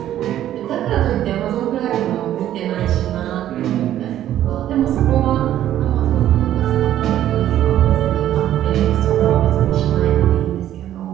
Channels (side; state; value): left; quieter; 12.1 dB